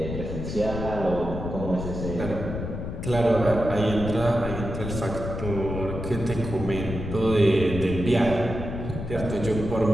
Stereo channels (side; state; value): left; noise; rumble, 6 dB below the sound